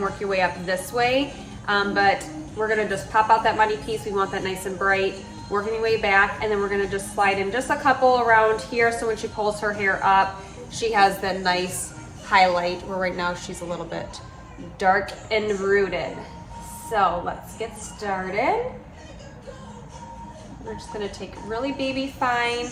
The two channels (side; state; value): both; identical; correlation 1.00